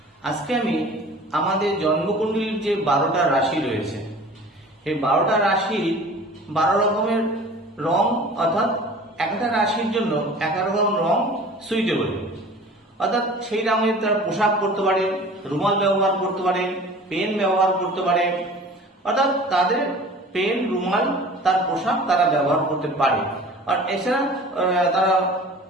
আজকে আমি আমাদের জন্মকুণ্ডলীর যে 12টা রাশি রয়েছে, এই 12টা রাশির 12 রকমের রং, অর্থাৎ একটা রাশির জন্য এক রকম রং সুইটেবল, অর্থাৎ সেই রঙের তারা পোশাক পরতে পারে, রুমাল ব্যবহার করতে পারে, পেন ব্যবহার করতে পারে, অর্থাৎ তাদের পেন, রুমাল, তার পোশাক তারা ব্যবহার করতে পারে। আর এছাড়া তারা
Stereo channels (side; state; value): both; normal; correlation 0.43